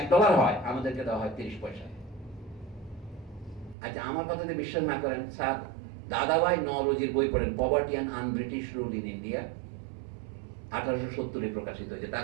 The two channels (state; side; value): drops out; left; at 3.8 s